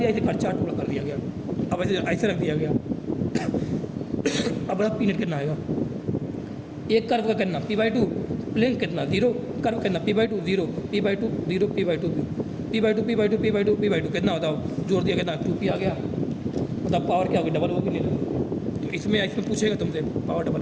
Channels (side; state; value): both; identical; correlation 1.00